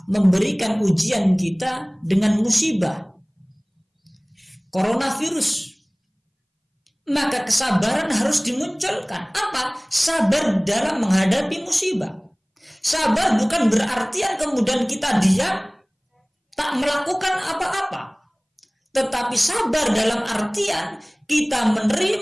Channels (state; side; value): identical; both; correlation 1.00